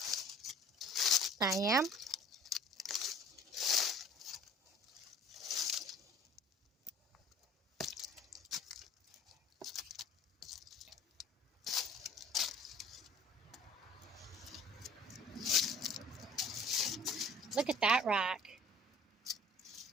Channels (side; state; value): both; normal; correlation 0.48